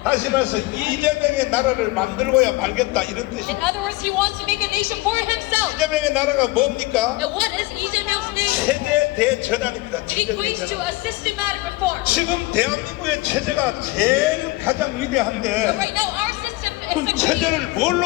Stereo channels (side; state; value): right; quieter; 20.7 dB